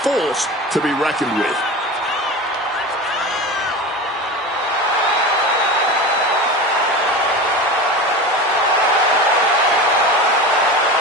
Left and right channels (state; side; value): normal; both; correlation 0.29